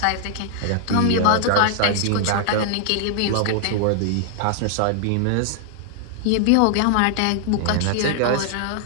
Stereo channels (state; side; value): different; both; correlation 0.00